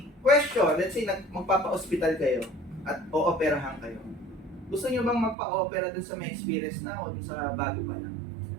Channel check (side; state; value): left; drops out; at 5.4 s